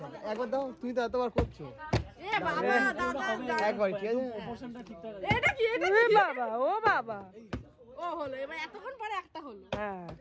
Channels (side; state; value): both; identical; correlation 1.00